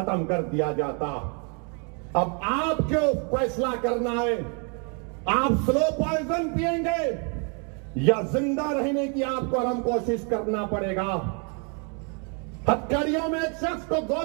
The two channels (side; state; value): left; quieter; 37.0 dB